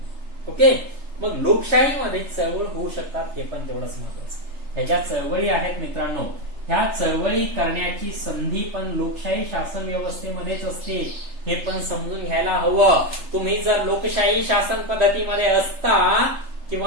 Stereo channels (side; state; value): left; late; 3.3 ms